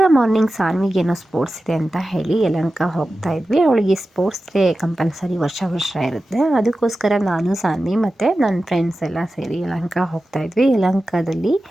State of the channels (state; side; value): normal; both; correlation 0.94